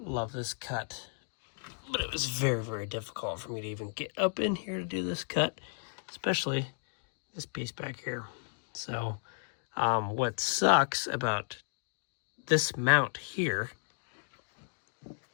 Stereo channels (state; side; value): silent; right; digital silence